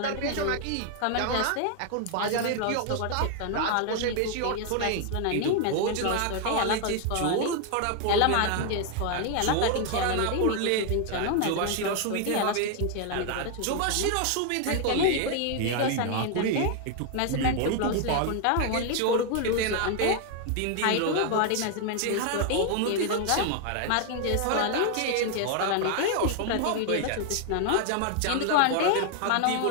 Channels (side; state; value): both; different; correlation 0.00